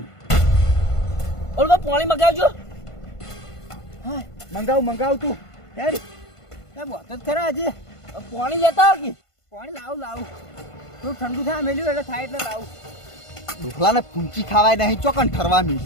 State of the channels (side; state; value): right; late; 1.5 ms